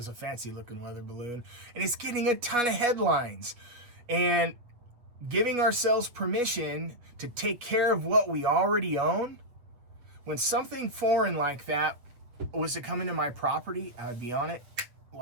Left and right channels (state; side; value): late; left; 8.3 ms